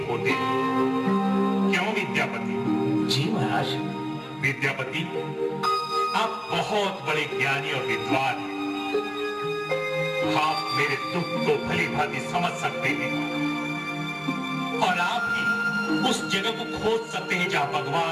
होते हैं। क्यों विद्यापति? जी महाराज। विद्यापति, आप बहुत बड़े ज्ञानी और विद्वान हैं। आप मेरे दुख को भली भांति समझ सकते हैं और आप ही उस जगह को खोज सकते हैं जहां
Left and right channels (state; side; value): identical; both; correlation 1.00